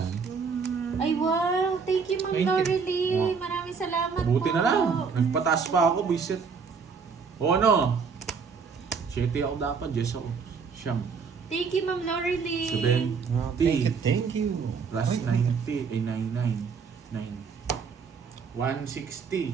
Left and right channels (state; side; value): quieter; left; 5.5 dB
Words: Ay wow, thank you Ma'am 20. Laurelie. Maraming salamat Buti po. na lang, nagpataas pa ako, bisit. O ano? 7 ako dapat, Jess ako. Siyam. Thank you Ma'am Laurelie. 7, Oh, thank you. plus 90, ay 99. 9. 160.